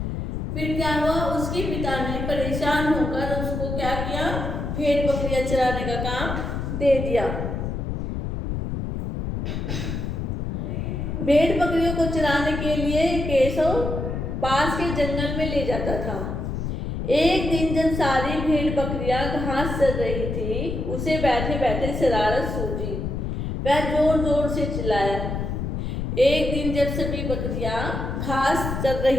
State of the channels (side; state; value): left; noise; rumble, 3 dB below the sound